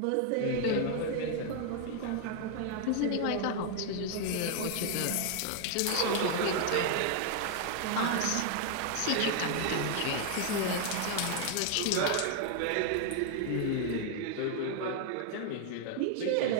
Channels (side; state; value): both; different; correlation 0.00